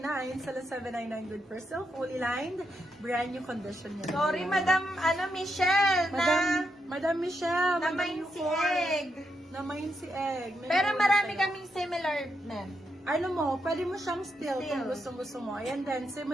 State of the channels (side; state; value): both; normal; correlation 0.82